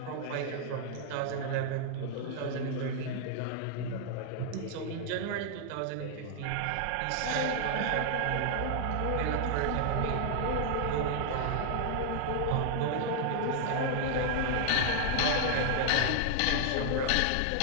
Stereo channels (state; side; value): different; both; correlation 0.00